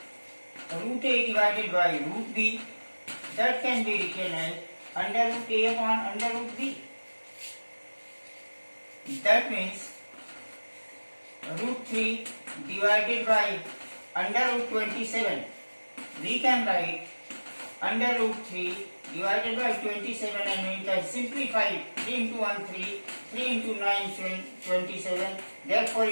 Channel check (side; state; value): both; inverted; correlation -1.00